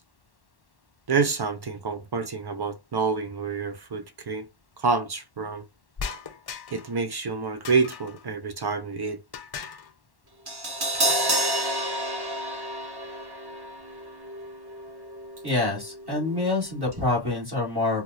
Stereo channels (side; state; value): left; late; 1.1 ms